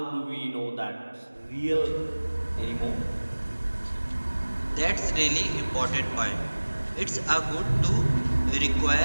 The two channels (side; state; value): both; inverted; correlation -1.00